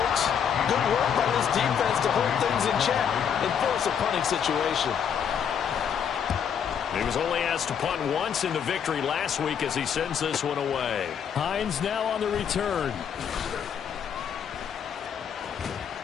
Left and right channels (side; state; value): right; quieter; 7.9 dB